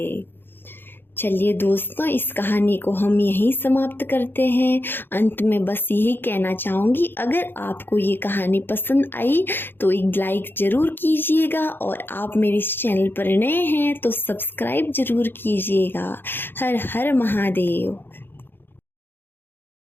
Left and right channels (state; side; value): late; right; 0.10 ms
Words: चलिए दोस्तों, इस कहानी को हम यहीं समाप्त करते हैं। अंत में बस यही कहना चाहूँगी, अगर आपको ये कहानी पसंद आई तो एक लाइक ज़रूर कीजिएगा और आप मेरे इस चैनल पर नए हैं तो सब्सक्राइब ज़रूर कीजिएगा। हर हर महादेव।